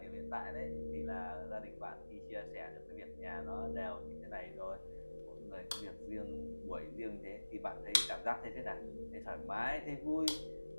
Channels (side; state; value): both; inverted; correlation -1.00